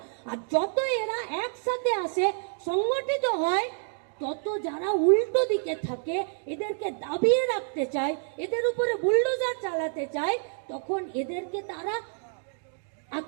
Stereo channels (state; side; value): silent; left; digital silence